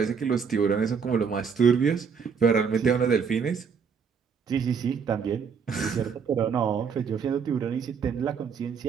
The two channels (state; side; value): quieter; left; 6.3 dB